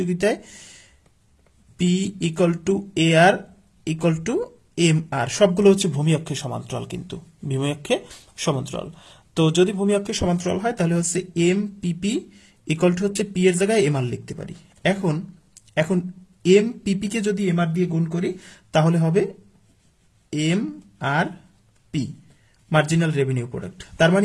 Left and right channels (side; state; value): both; identical; correlation 1.00